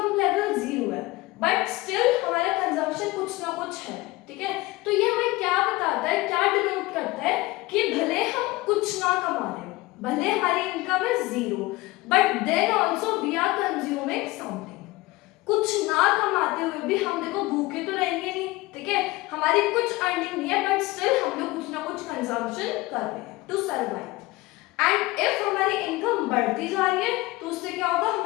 लेवल 0 है बट स्टिल हमारा कंजम्पशन कुछ ना कुछ है, ठीक है। तो ये हमें क्या बताता है, क्या डिनोट करता है कि भले हम कुछ ना कमा रहे हो, भले हमारी इनकम है 0 but then also we are consuming something. कुछ ना कमाते हुए भी हम देखो भूखे तो रहेंगे नहीं, ठीक है, हमारी कुछ अर्निंग नहीं है बट स्टिल हम लोग कुछ ना कुछ कंजम्पशन कर रहे हैं टू सर्वाइव। एंड इफ हमारी इनकम बढ़ती जा रही है तो उससे क्या होगा,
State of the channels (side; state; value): right; quieter; 20.5 dB